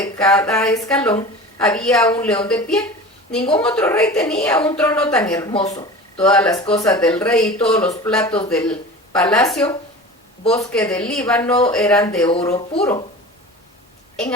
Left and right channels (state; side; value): normal; both; correlation 0.35